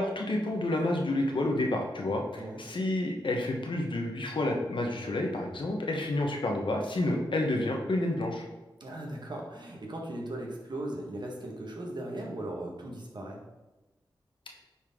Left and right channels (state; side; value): normal; both; correlation 0.78